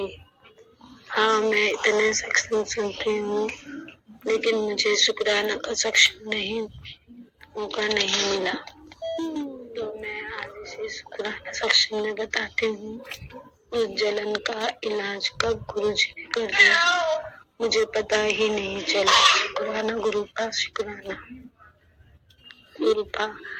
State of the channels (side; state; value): both; identical; correlation 1.00